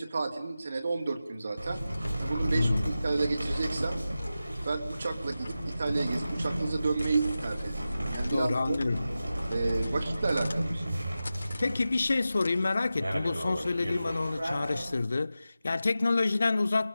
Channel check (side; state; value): both; inverted; correlation -0.93